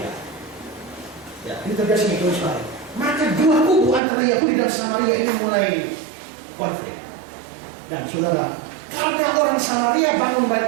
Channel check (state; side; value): drops out; left; at 4.0 s